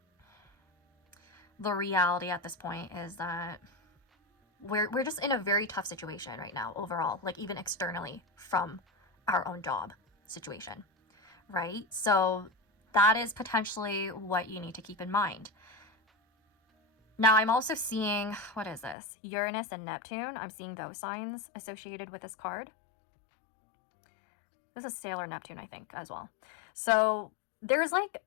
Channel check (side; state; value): right; drops out; at 18.9 s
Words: the reality at this point is that we're just in a very tough situation right now overall, like even externally from our own job situation, right? So that is potentially what you need to keep in mind. Now, I'm also seeing, what is this? Uranus and Neptune. I'm seeing those signs associated with this card. This is Sailor Neptune, I think, as well. So there's like